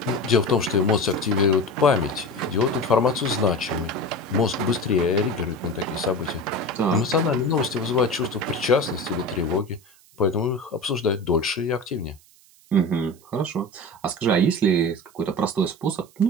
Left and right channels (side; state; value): right; noise; hiss, 28 dB below the sound